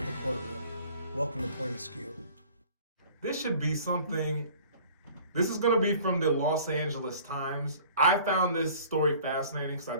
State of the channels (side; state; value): both; inverted; correlation -0.49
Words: the courtroom. Welcome to Point of Skew. This should be something, this is going to be from the Los Angeles Times. I found this story fascinating because